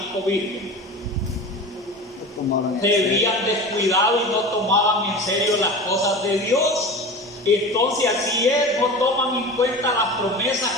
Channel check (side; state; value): both; normal; correlation 0.33